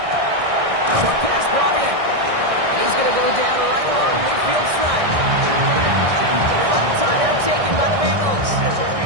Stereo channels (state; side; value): late; left; 1.6 ms